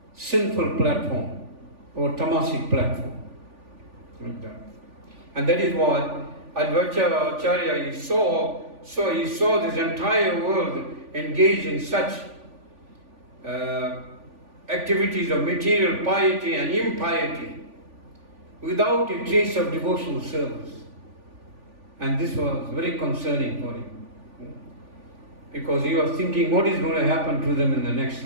sinful platform or tamasic platform. Like that. And that is why Advaita Acharya he saw this entire world engaged in such activities of material piety and impiety without a trace of devotional service. And this was very concerning for him. Because he was thinking what is going to happen to them in the next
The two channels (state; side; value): late; left; 3.4 ms